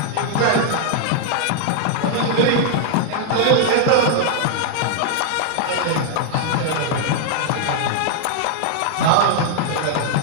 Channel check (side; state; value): both; different; correlation 0.00